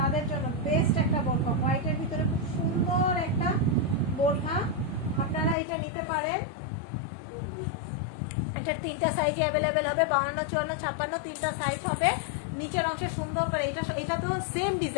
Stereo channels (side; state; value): right; drops out; at 5.6 s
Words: জন্য বেস্ট একটা বোরখা। হোয়াইটের ভিতরে খুব সুন্দর একটা বোরখা, আপনারা এটা নিতে পারেন। এটার তিনটা সাইজে অ্যাভেলেবেল হবে, 52, 54, 56 তিনটা সাইজ হবে। নিচের অংশে সুন্দর করে এটা তো সেম